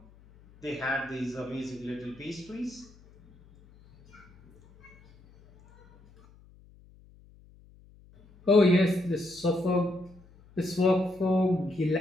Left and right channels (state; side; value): noise; left; hum, 26 dB below the sound